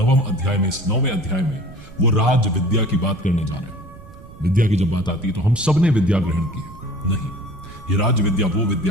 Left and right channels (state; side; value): noise; right; rumble, 19 dB below the sound